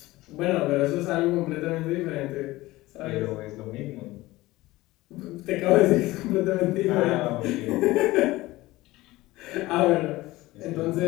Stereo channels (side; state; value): right; quieter; 18.8 dB